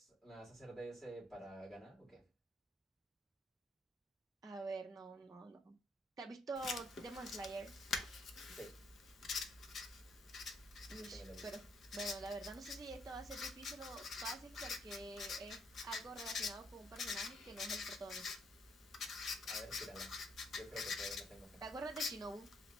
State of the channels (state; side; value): normal; both; correlation 0.71